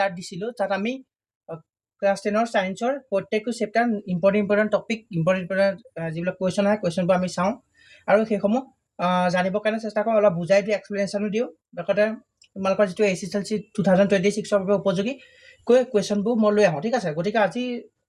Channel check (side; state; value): both; identical; correlation 1.00